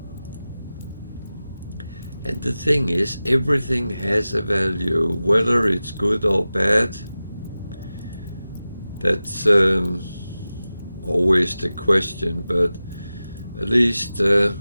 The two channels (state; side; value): inverted; both; correlation -0.95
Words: And the thing is, everything has a value, whether it's good or bad. That's always the question, but at least